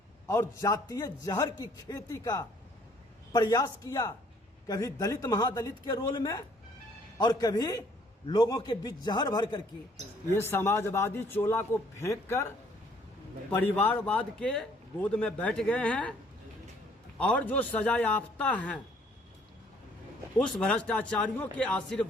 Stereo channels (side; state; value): both; normal; correlation 0.61